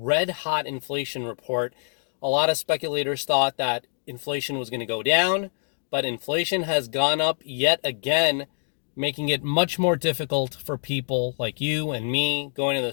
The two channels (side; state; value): right; silent; digital silence